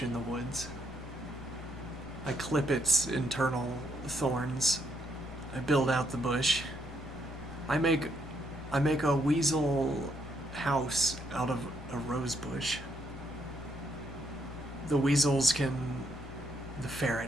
in the woods. I clip its internal thorns. I build out the bush. I make a weasel house out of a rose bush. The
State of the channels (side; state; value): both; normal; correlation 0.74